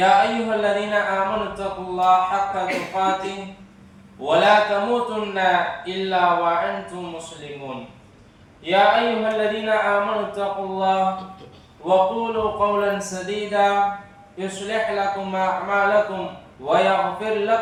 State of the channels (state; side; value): identical; both; correlation 1.00